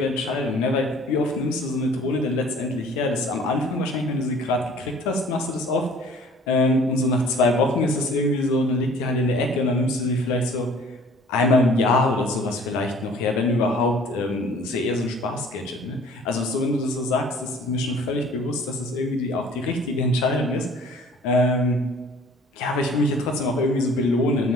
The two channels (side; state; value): both; normal; correlation 0.51